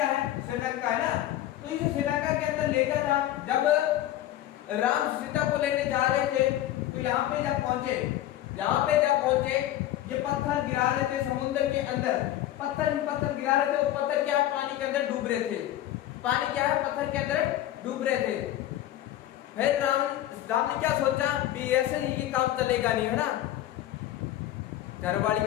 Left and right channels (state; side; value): quieter; right; 13.3 dB